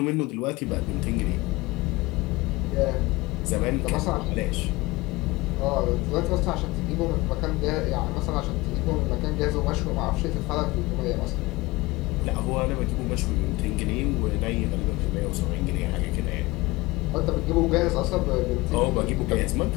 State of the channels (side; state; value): right; quieter; 21.3 dB